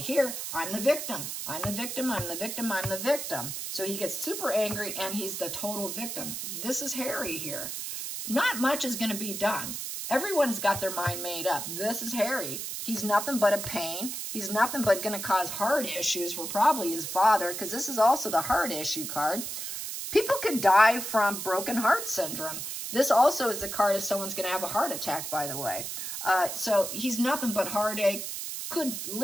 I'm the victim. I'm the victim. I'm the victim. I'm the victim. So he gets super angry, and he's the total victim. This is Harry here. Not much is going to be done. Everyone's got their mind made up. This is Harry. He's nothing but a pain. He's nothing but going to cause heart issues for probably his father, because this is also the heart issue card. People could die from broken heart syndrome. This also is the card if someone's going to have a heart attack, by the way. So he's nothing but heartache. Could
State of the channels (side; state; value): right; noise; hiss, 5 dB below the sound